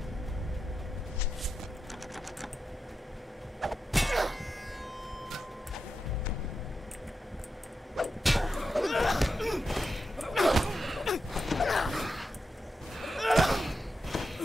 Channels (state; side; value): normal; both; correlation 0.89